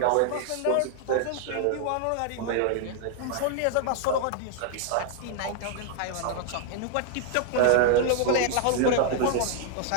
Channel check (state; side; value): different; both; correlation 0.00